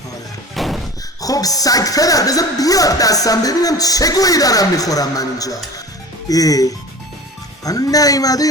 خب سگ پدر بذار بیاد دستم ببینم چه گویی دارم میخورم من اینجا. من نیومده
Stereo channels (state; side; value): normal; both; correlation 0.37